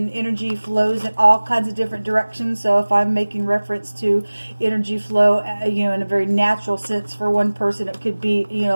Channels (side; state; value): both; inverted; correlation -1.00